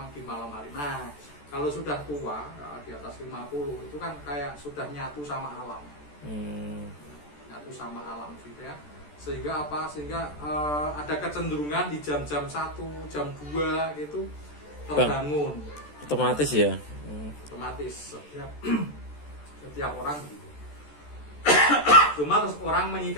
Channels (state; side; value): late; right; 14 ms